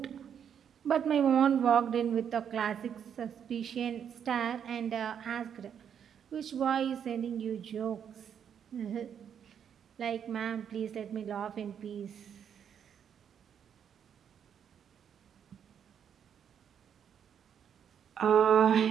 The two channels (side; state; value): left; quieter; 8.3 dB